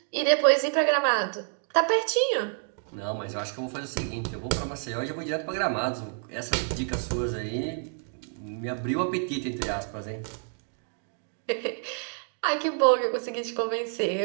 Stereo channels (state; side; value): silent; left; 59 dB below the other